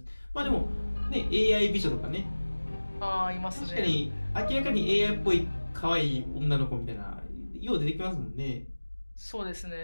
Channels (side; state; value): both; inverted; correlation -1.00